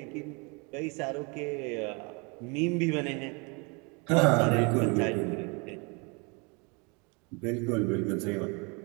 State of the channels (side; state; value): left; quieter; 31.2 dB